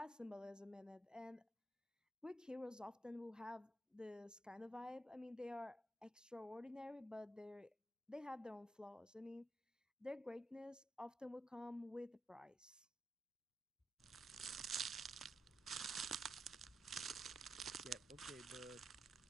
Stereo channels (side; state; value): both; normal; correlation 0.84